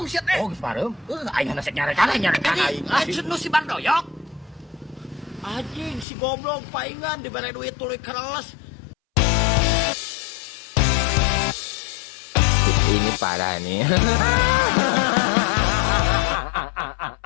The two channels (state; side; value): drops out; right; at 6.1 s